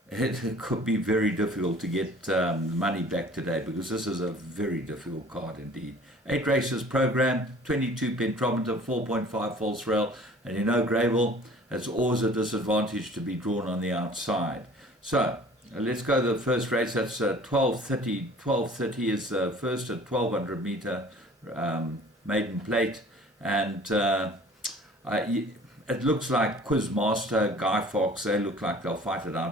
it could be very difficult to get money back today because this is a very difficult card indeed. 8 races programmed, 22 pentrometer, 4.5 false rail, and you know Greyville, it's always a disadvantage to be drawn on the outside. So let's go to the first race. That's 12:30. 12:30 is the first at 1200 meter maiden plate, and it looks like Quizmaster, Guy Fawkes, they look like they'll fight it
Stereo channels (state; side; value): normal; both; correlation 0.49